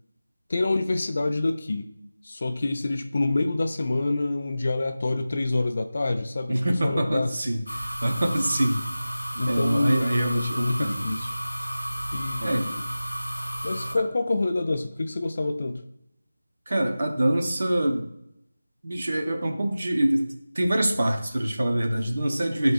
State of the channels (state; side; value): inverted; both; correlation -0.96